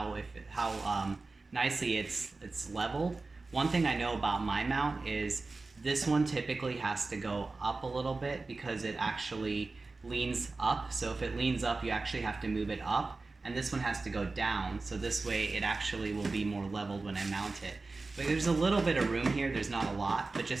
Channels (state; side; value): quieter; left; 3.6 dB